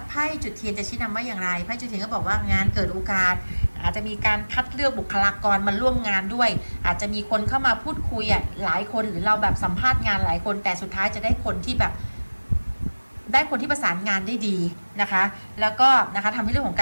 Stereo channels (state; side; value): inverted; both; correlation -1.00